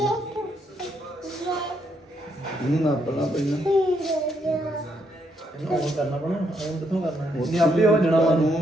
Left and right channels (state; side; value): normal; both; correlation 0.76